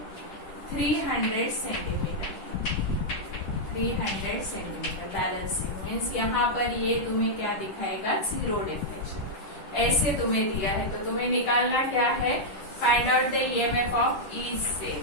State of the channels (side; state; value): right; late; 10 ms